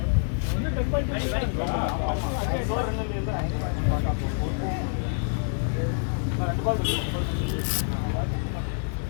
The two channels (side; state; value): right; silent; digital silence